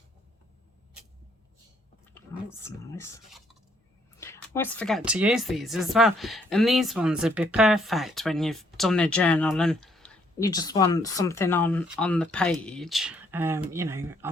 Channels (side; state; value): both; normal; correlation 0.68